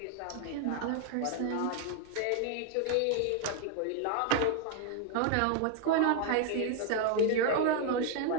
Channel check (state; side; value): different; both; correlation 0.01